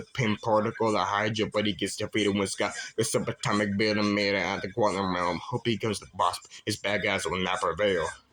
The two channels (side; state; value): both; identical; correlation 1.00